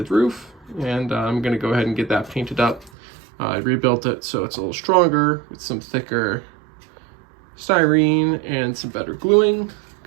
roof, and I'm going to go ahead and get that painted up. I rebuilt it so it's a little stronger with some thicker styrene and some better gluing,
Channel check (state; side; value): drops out; left; at 2.9 s